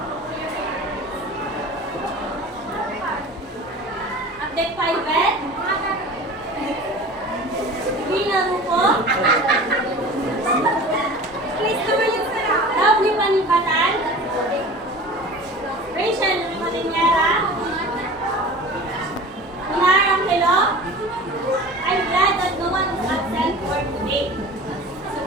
Update 5 bed. Gina Rupo. Chris Tumalinsa. Lovely Panibatan. Rachel Malinera. Minar Angelo. I'm glad that no one is absent for today. So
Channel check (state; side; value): normal; both; correlation 0.38